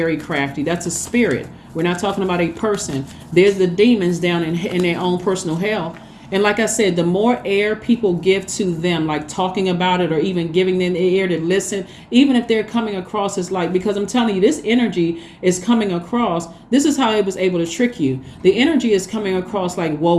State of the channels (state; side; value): identical; both; correlation 1.00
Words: crafty. That's a spirit. We're not talking about a person. There's the demons down in their own personal hell. And like I said, the more air people give to them, like talking about it or even giving them the air to listen, even if they're coming across as like, because I'm telling you, this energy is coming across. This is how it was able to trick you. The energy is coming across like,